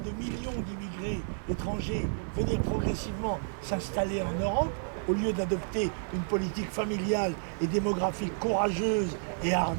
de millions d'immigrés étrangers venir progressivement s'installer en Europe, au lieu d'adopter une politique familiale et démographique courageuse et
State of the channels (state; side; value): silent; left; digital silence